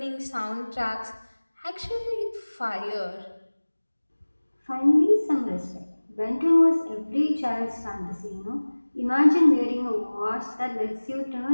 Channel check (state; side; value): inverted; both; correlation -1.00